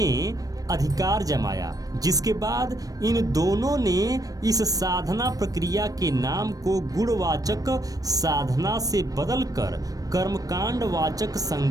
अधिकार जमाया। जिसके बाद इन दोनों ने इस साधना प्रक्रिया के नाम को गुणवाचक साधना से बदलकर कर्मकांड वाचक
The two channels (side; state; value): left; late; 0.18 ms